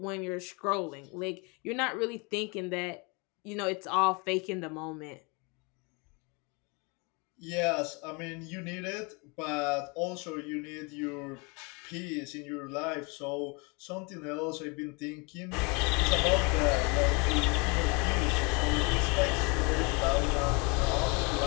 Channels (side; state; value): right; quieter; 30.5 dB